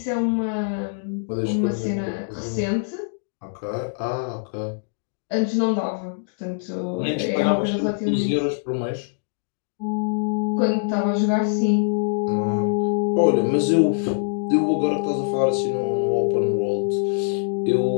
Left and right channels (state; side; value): silent; right; digital silence